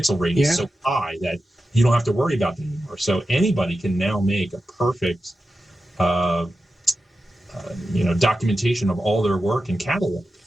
rate is so high that you don't have to worry about it anymore. So anybody can now make a perfect documentation of all their work and catalog.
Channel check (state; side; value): normal; both; correlation 0.92